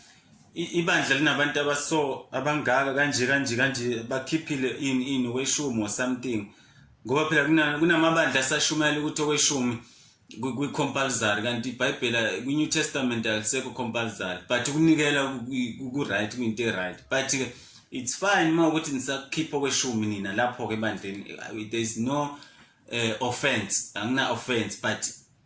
ibandla linabantu abaso abangaka kanje bakhiphile in weshumi or something. Ngoba phela kunamabandla asashumayela ukuthi okweshumi kwi-compulsory kanti iBhayibheli kwi-New Testament alisekho compulsory, but ukunikela ku-right kuyinto right. But it's fine uma ukuthi nisakhipha okweshumi nina lapho ke ebandleni, there is no offense, angina offense, but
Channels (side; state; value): both; identical; correlation 1.00